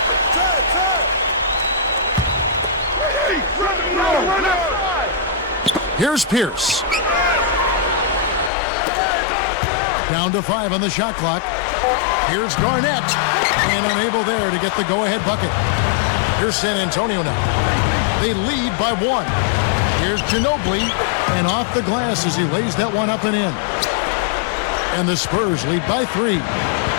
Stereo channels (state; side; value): drops out; right; at 8.5 s